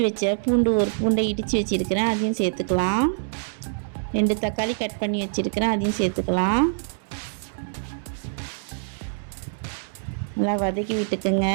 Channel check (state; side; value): silent; left; 62 dB below the other